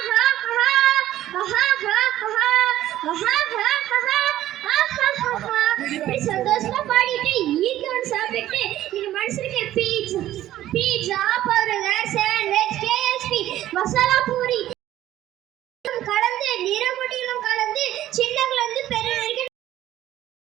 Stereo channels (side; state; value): left; quieter; 13.5 dB